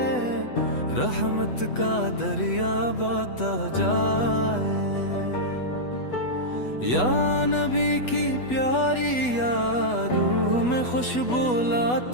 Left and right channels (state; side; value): late; right; 8.1 ms